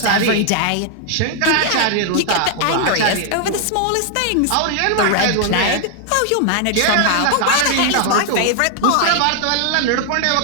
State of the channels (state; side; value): different; both; correlation 0.00